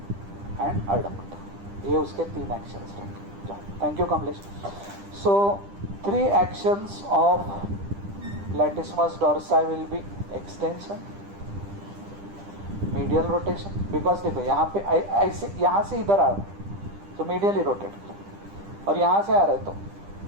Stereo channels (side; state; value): left; late; 10 ms